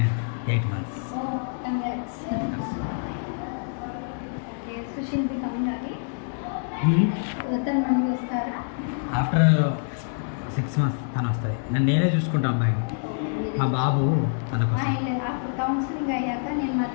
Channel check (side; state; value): right; silent; digital silence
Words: 8 months. Oh, congrats. Okay, so she'll be coming again. తను మళ్ళీ వస్తారా? After 6 months తను వస్తుంది. నేనే చూసుకుంటా అబ్బాయిని. మా బాబు తన కోసం. అప్పుడు కౌన్సిలింగ్ అయ్యాక నేను